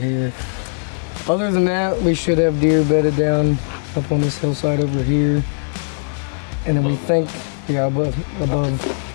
Other than that, we should have deer bedded down up on this hillside over here, and then we think, yeah, above Also above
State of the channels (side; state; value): right; silent; 59 dB below the other